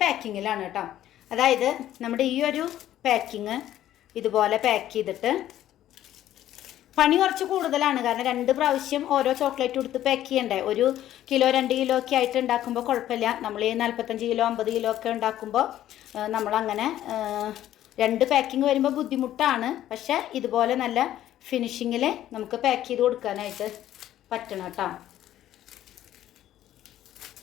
പാക്കിങ്ങിലാണ് കേട്ടോ. അതായത് നമ്മുടെ ഈ ഒരു പാക്കിങ് ഇതുപോലെ പാക്ക് ചെയ്തിട്ട് പണി കുറച്ച് കൂടുതലാണ്. കാരണം 2 പ്രാവശ്യം ഓരോ ചോക്ലേറ്റ് കൊടുത്ത് പാക്ക് ചെയ്യണ്ടേ. 1 കിലോ 2 കിലോ ഒക്കെ ആയിട്ട് ഉണ്ടാക്കുമ്പോൾ കുഴപ്പമില്ല. നമ്മൾ ഈ 45 കിലോ 50 കിലോ ഒക്കെ ഉണ്ടാക്കുമ്പോൾ നമ്മളങ്ങനെ 2 പാക്കിങ് വരുമ്പോൾ ബുദ്ധിമുട്ടാണ്. പക്ഷേ ഇതുപോലെ നല്ല ഫിനിഷിങ്ങിൽ നമുക്ക് പാക്ക് ചെയ്ത് കൊടുക്കാനായിട്ട് പറ്റണം കേട്ടോ.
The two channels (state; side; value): quieter; right; 12.6 dB